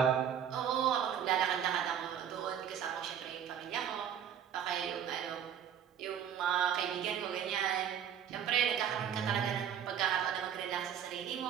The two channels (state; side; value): quieter; left; 8.8 dB